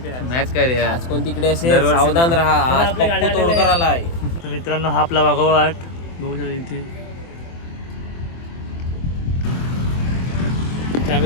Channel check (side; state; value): right; late; 24 ms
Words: मॅच काय रे आज कोण तिकडे असेल सावधान राहा. आज पप्पू तोडकर आला आहे. तर मित्रांनो हा आपला वाघोवाट बघू शकता इथे